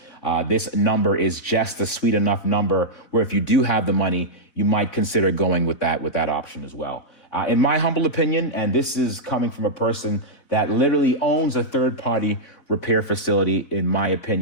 This number is just a sweet enough number where if you do have the money, you might consider going with that option as well. In my humble opinion, and this is coming from a person that literally owns a third-party repair facility, in my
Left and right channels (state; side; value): late; right; 4.2 ms